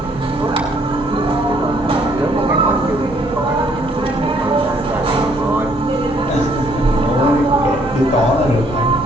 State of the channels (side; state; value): both; normal; correlation 0.65